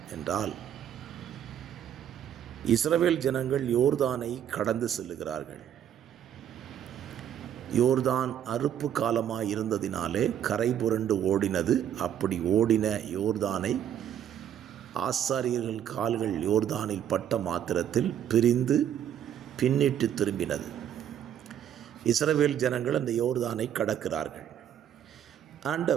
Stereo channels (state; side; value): quieter; left; 9.9 dB